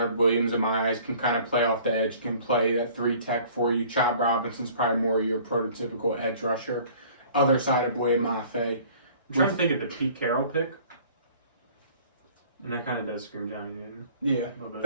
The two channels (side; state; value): both; inverted; correlation -0.51